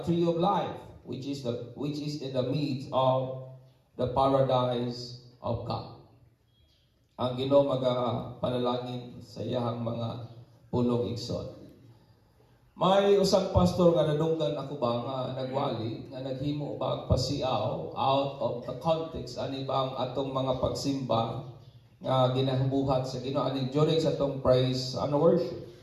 tree of life, which is in the midst of the paradise of God. Ang Ginoo panalangin sa iyahang mga pulong igsoon. May usang pastor nga nadunggan ako ba nga nagwali nga naghimo ba pasiaw out of the context ani bang atong mga pagsimba nga ginabuhat sa Ginoo ani during sa atong praise and worship.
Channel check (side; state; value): both; identical; correlation 1.00